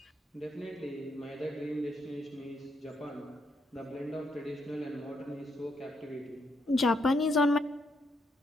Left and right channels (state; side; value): normal; both; correlation 0.77